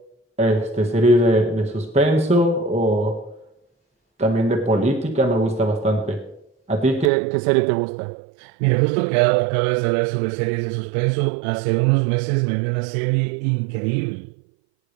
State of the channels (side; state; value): left; drops out; at 7.1 s